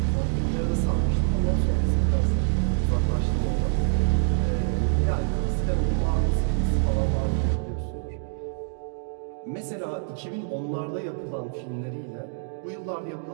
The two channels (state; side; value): silent; left; digital silence